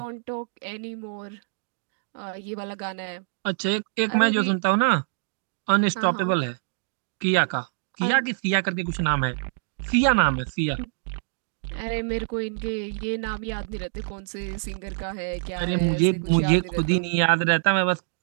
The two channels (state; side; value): silent; left; digital silence